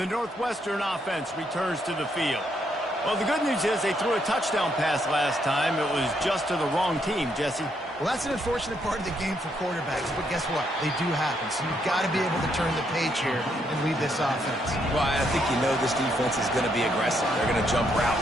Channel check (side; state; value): both; normal; correlation 0.75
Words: Northwestern offense returns to the field. Well, the good news is they threw a touchdown pass last time. It was just to the wrong team, Jesse. Well, that's an unfortunate part of the game for quarterbacks, but guess what? They do happen, so you've got to be able to turn the page here and lead this offense. Well, I think you know this defense is going to be aggressive. They're going to jump